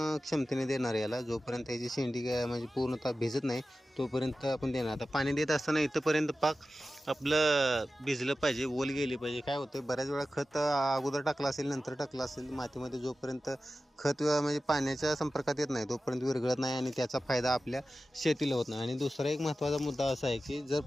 क्षमतेने देणार याला. जोपर्यंत याची शेंडी म्हणजे पूर्णतः भिजत नाही तोपर्यंत आपण देणार. आता पाणी देत असताना इथंपर्यंत पाक आपलं भिजलं पाहिजे, ओल गेली पाहिजे. काय होतं बऱ्याच वेळा खत अगोदर टाकलं असेल नंतर टाकलं असेल मातीमध्ये, जोपर्यंत खत म्हणजे पाण्याच्या संपर्कात येत नाही तोपर्यंत विरघळत नाही आणि त्याचा फायदा आपल्या शेतीला होत नाही. आणि दुसरा एक महत्त्वाचा मुद्दा असा आहे की जर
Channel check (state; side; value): normal; both; correlation 0.94